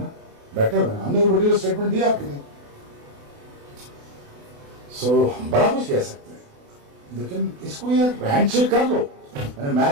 बैठे हुए हैं, हमने वो पर्टिकुलर स्टेटमेंट दिया आपके लिए, सो बड़ा कुछ कह सकते हैं, लेकिन इसको यार हैंडशेक कर लो। मैंने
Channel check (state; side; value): late; left; 28 ms